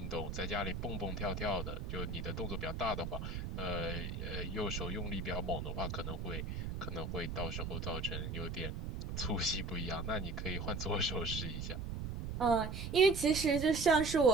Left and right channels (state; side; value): noise; right; rumble, 5 dB below the sound